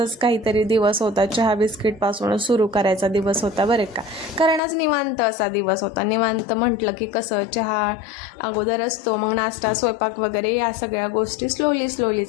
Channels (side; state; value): right; drops out; at 4.6 s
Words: काहीतरी दिवस होता, चहा बिस्किटपासून सुरू करायचा दिवस होता बरं का. कारण आज निवांत असा दिवस होता. निवांत म्हटलं की कसं चहा अगोदर असतो, मग नाश्ता स्वयंपाक वगैरे या सगळ्या गोष्टी स्लोली